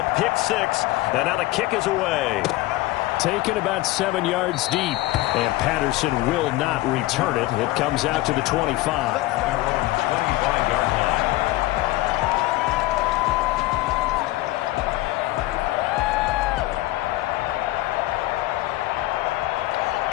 pick 6, and now the kick is away. Taken about 7 yards deep, and Patterson will not return it. It comes out to the 25. 25-yard line.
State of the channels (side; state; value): right; quieter; 18.1 dB